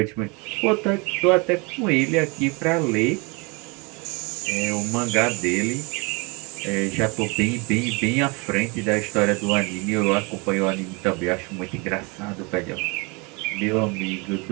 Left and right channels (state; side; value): quieter; left; 29.1 dB